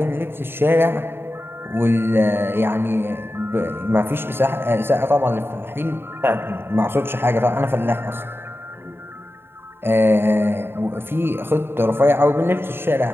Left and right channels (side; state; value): left; late; 0.11 ms